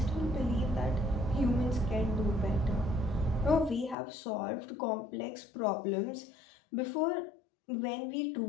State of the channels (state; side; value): drops out; right; at 4.0 s